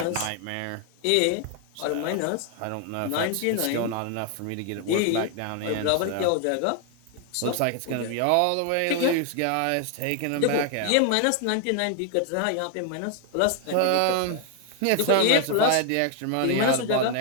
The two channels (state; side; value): different; both; correlation 0.00